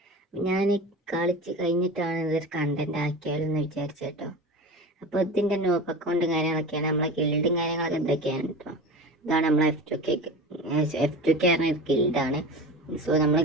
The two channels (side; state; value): both; normal; correlation 0.31